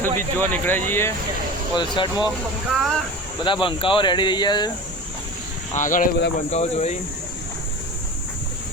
બીચ જોવા નીકળ્યા છીએ વલસાડમાં. બધા બંકાઓ રેડી થઈ ગયા છે. આગળ બધા બંકાઓ જોઈ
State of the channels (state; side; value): normal; both; correlation 0.33